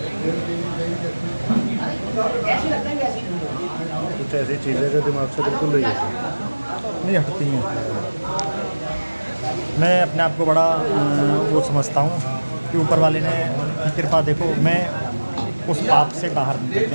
कुछ ऐसी चीज़ें जो दिमाग से बिल्कुल नहीं हटती हैं। मैं अपने आप को बड़ा वो समझता हूँ कि ऊपर वाले ने कृपा, देखो मैं उस पाप से बाहर निकल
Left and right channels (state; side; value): inverted; both; correlation -1.00